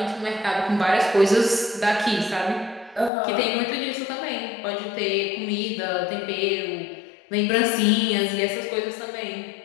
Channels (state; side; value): drops out; right; at 3.1 s